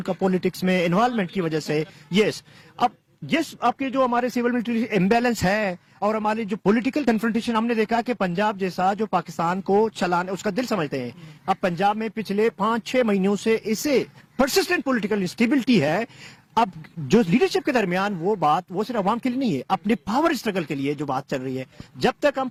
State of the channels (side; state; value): both; identical; correlation 1.00